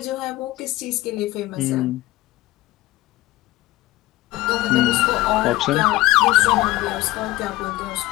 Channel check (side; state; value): right; quieter; 17.7 dB